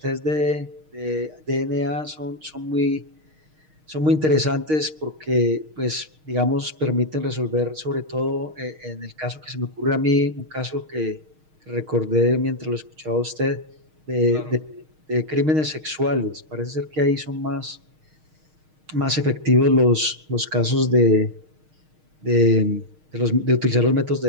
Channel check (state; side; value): late; left; 6.5 ms